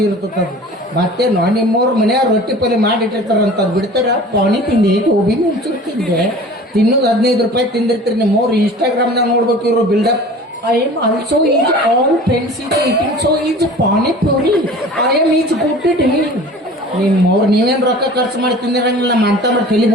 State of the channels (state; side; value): normal; both; correlation 0.42